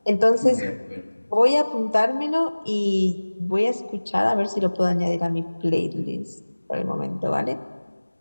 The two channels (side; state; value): both; inverted; correlation -1.00